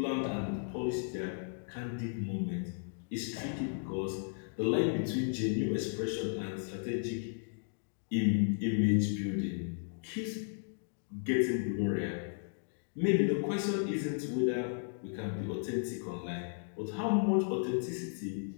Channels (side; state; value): right; silent; digital silence